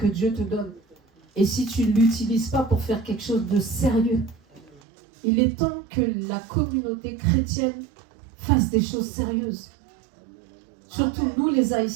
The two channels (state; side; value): drops out; left; at 4.8 s